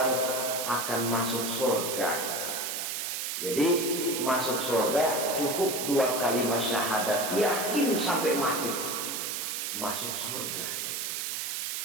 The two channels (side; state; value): right; noise; hiss, 2 dB below the sound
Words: akan masuk surga. Jadi masuk surga cukup dua kalimat syahadat, yakin sampai mati, masuk surga.